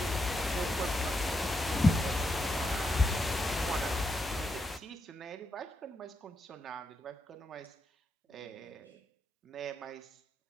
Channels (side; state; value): both; normal; correlation 0.84